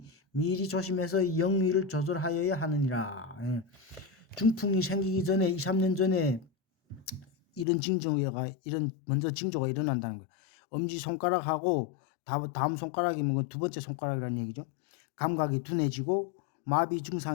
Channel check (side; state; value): right; drops out; at 7.7 s